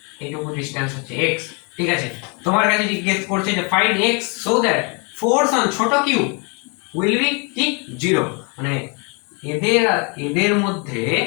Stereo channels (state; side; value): quieter; right; 33.8 dB